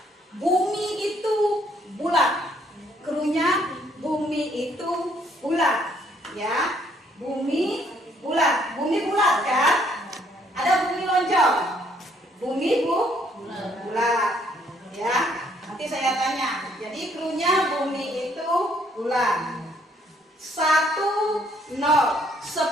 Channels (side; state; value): both; normal; correlation 0.66